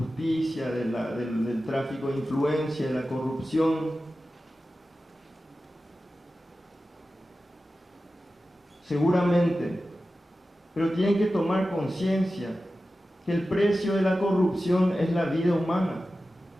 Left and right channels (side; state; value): both; normal; correlation 0.94